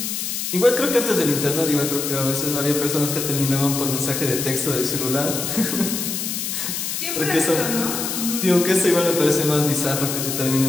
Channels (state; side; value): noise; left; hiss, 3 dB below the sound